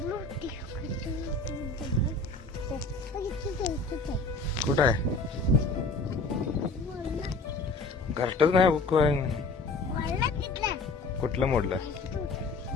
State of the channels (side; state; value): right; quieter; 3.6 dB